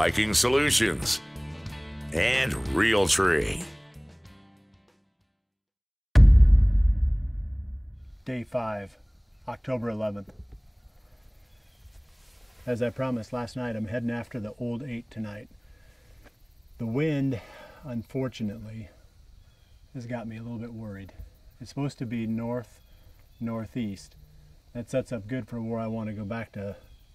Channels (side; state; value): both; identical; correlation 1.00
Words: Solutions, and Realtree. Day 5, October 11th. As I promised last night, I'm heading after the old 8 tonight. The wind, unfortunately, has got me a little bit worried. It's supposed to be north-northeast. That sets up good for where I want to go back to